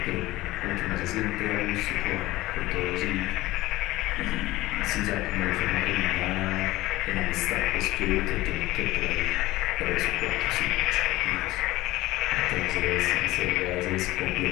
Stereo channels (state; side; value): quieter; right; 18.0 dB